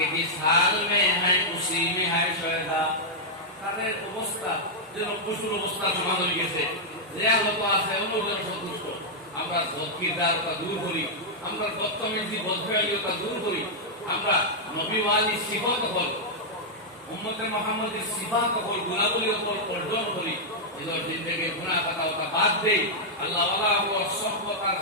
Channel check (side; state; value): both; normal; correlation -0.06